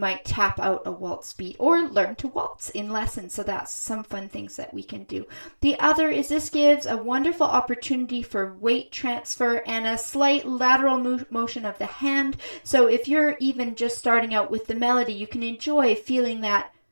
tap out a waltz beat or learn to waltz in lessons. So that's some fun things that we can do. The other is this gives a wonderful opportunity for weight transfer and a slight lateral motion of the hand. So if you're even just starting out with the melody, you can enjoy feeling that.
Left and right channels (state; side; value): inverted; both; correlation -1.00